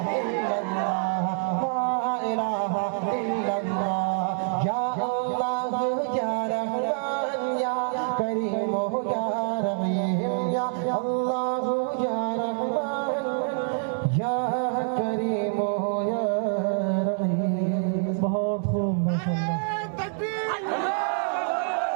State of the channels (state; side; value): silent; left; 61 dB below the other